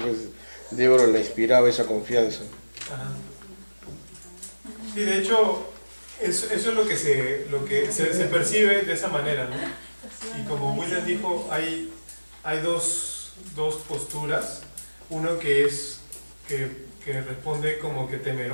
Débora le inspiraba esa confianza. Ajá. Sí, de hecho, eso es lo que se percibe de esa manera, ¿no? Y como William dijo, hay dos posturas. Uno que responde como que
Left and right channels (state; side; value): inverted; both; correlation -1.00